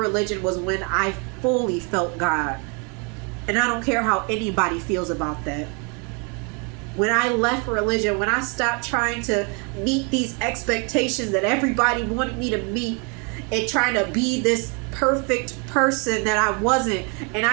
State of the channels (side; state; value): left; quieter; 34.3 dB